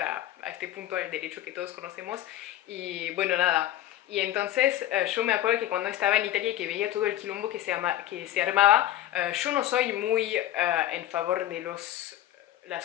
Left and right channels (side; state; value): right; quieter; 13.3 dB